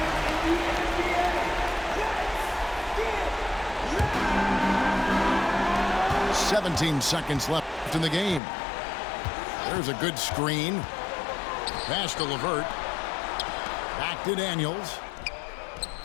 Seconds left in the game. There's a good screen. Pass to LeVert. Back to Daniels.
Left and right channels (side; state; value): right; drops out; at 8.4 s